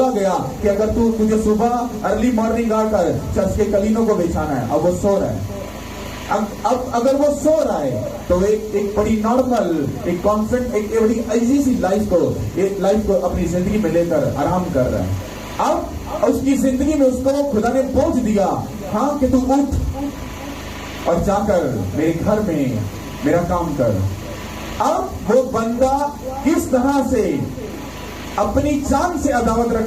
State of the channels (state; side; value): identical; both; correlation 1.00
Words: गया कि अगर तुझे सुबह अर्ली मॉर्निंग आकर चर्च के कलीनों को बिछाना है, अब वो सो रहा है, अब अगर वो सो रहा है तो एक बड़ी नॉर्मल, एक कॉन्फिडेंट, एक बड़ी इजी सी लाइफ को अपनी जिंदगी में लेकर आराम कर रहा है। अब उसकी जिंदगी में उसको खुदा ने बोझ दिया, हाँ, कि तू उठ और जाकर मेरे घर में मेरा काम कर। अब वो बंदा किस तरह से अपनी जान से अदावत